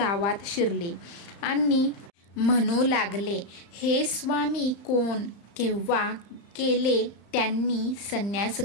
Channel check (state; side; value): late; right; 35 ms